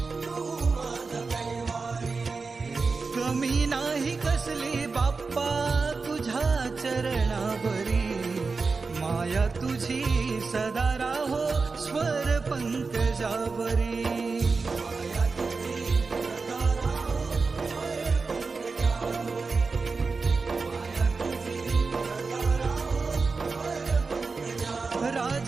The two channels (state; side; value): quieter; left; 4.4 dB